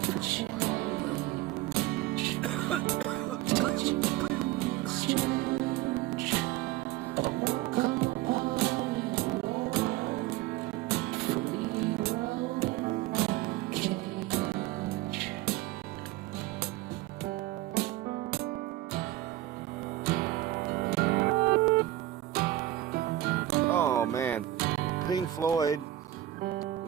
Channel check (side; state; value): left; quieter; 14.9 dB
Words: Oh man, Pink Floyd,